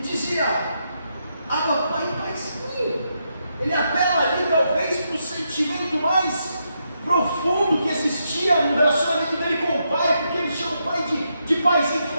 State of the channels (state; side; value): inverted; both; correlation -0.81